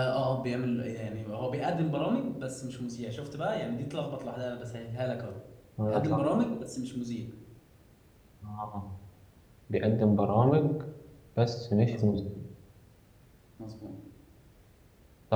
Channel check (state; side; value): identical; both; correlation 1.00